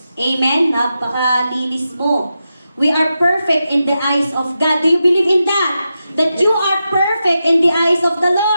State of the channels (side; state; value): both; inverted; correlation -0.89